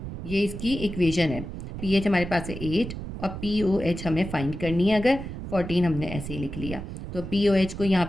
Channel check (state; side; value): noise; right; rumble, 8 dB below the sound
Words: ये इसकी इक्वेशन है। pH हमारे पास है 8 और pOH हमें फाइंड करनी है। अगर 14 हमने ऐसे ही लिख लिया तो pOH को यहाँ